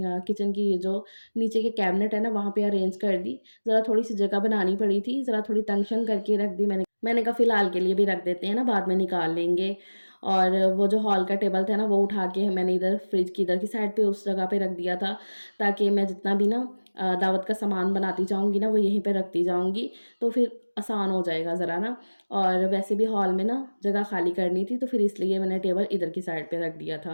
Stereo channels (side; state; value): both; inverted; correlation -1.00